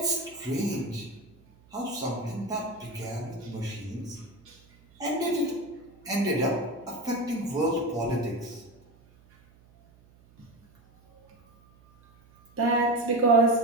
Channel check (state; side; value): noise; right; hum, 28 dB below the sound